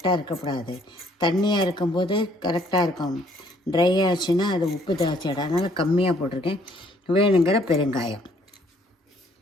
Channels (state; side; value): normal; both; correlation 0.64